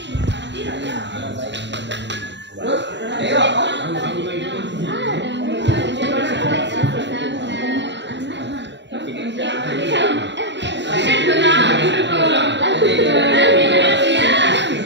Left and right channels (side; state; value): left; late; 0.52 ms